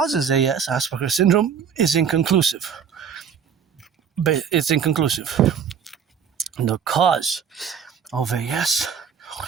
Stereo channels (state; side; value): quieter; left; 7.4 dB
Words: AS, Asperger's syndrome, is inconclusive. But it's inconclusive. The cause of AS,